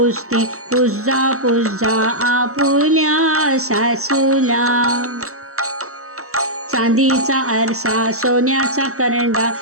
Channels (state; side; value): late; left; 0.64 ms